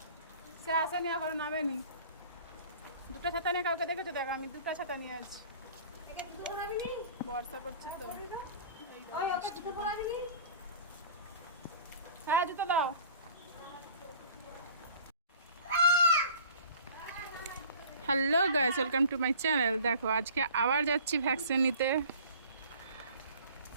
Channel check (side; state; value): both; inverted; correlation -0.47